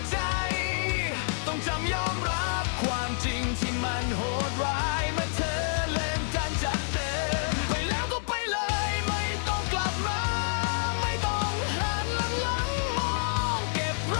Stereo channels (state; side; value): silent; right; digital silence